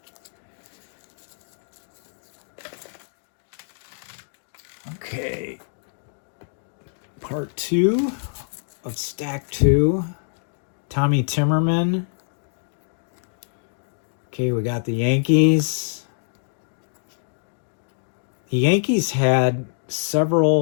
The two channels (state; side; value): silent; right; digital silence